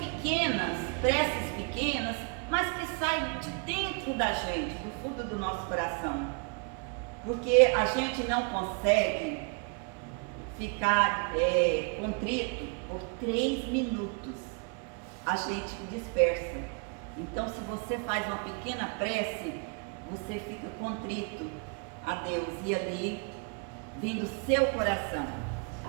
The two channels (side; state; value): left; quieter; 37.3 dB